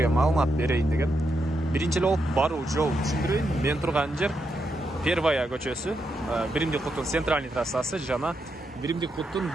маалымат берейин деген. Биринчи эле болуп баруу жол түшүндүрөйүн. Мен турган жер Первая көчөсү, Биримдик куттун центральный трассасы жана Биримдик куттун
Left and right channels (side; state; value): both; normal; correlation 0.83